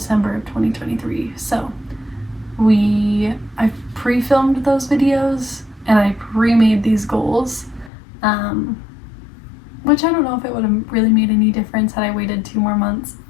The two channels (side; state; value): right; drops out; at 7.9 s